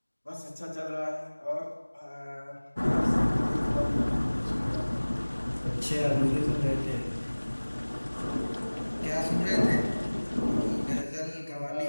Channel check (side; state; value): both; inverted; correlation -1.00